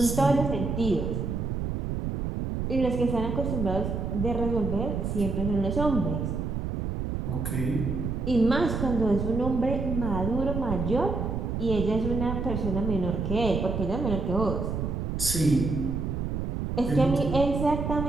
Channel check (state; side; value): noise; right; rumble, 2 dB below the sound